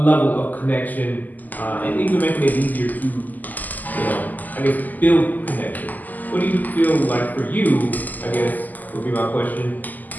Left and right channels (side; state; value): right; late; 0.083 ms